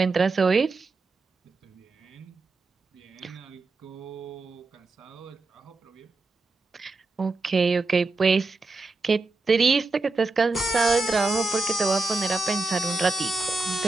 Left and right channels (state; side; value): quieter; left; 3.5 dB